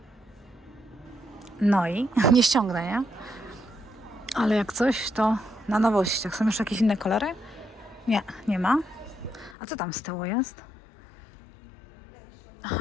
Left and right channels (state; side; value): drops out; right; at 9.6 s